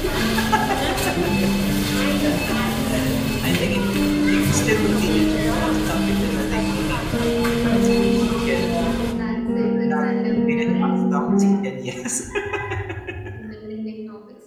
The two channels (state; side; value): identical; both; correlation 1.00